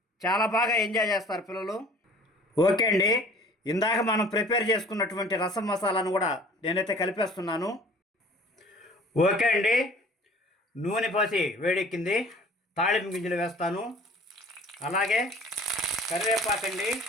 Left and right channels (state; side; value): normal; both; correlation 0.49